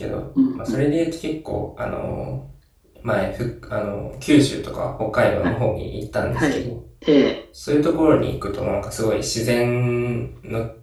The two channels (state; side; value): identical; both; correlation 1.00